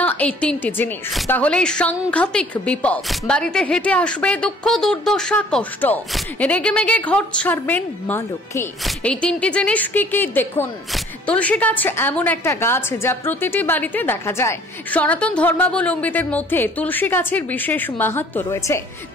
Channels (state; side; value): normal; both; correlation 0.55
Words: না এই তিনটি জিনিস, তাহলেই সাংঘাতিক বিপদ। বাড়িতে হেঁটে আসবে দুঃখ, দুর্দশা, কষ্ট, রেগেমেগে ঘর ছাড়বেন মা লক্ষ্মী। এই তিনটি জিনিস কি কি দেখুন। তুলসী গাছ এমন একটা গাছ যা প্রতিটি বাড়িতে দেখা যায়। সনাতন ধর্মাবলম্বীদের মধ্যে তুলসী গাছের বিশেষ মাহাত্ম্য রয়েছে।